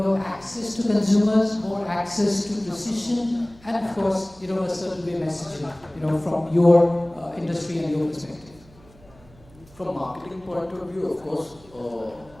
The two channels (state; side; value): noise; right; hum, 25 dB below the sound